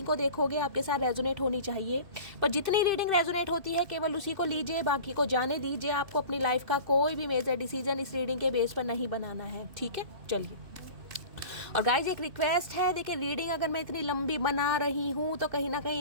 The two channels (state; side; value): late; left; 2.6 ms